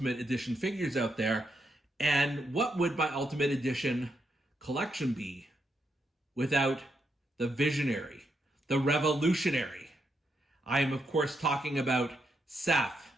Edition figures out there. And what would my Ultimate Edition collection be without the visionary, the revolutionary? I am, of course, talking about Seth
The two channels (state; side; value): normal; both; correlation 0.80